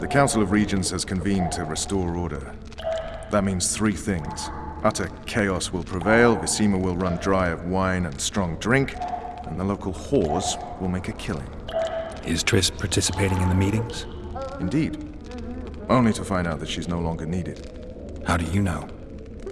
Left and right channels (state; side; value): identical; both; correlation 1.00